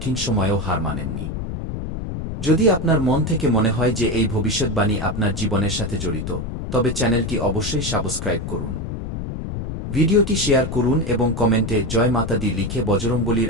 সময়েও হার মানেননি। যদি আপনার মন থেকে মনে হয় যে এই ভবিষ্যৎবাণী আপনার জীবনের সাথে জড়িত, তবে চ্যানেলটি অবশ্যই সাবস্ক্রাইব করুন। ভিডিওটি শেয়ার করুন এবং কমেন্টে জয় মাতা দি লিখে বজরংবলীর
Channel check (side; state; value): left; noise; rumble, 5 dB below the sound